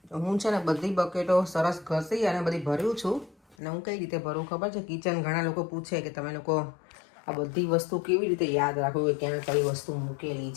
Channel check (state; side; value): drops out; right; at 3.6 s